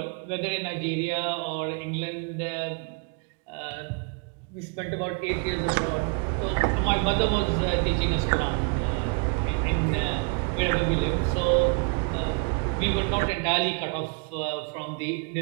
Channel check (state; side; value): quieter; left; 34.5 dB